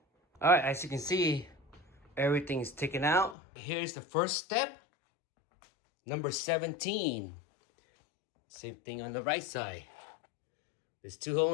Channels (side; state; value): right; drops out; at 3.4 s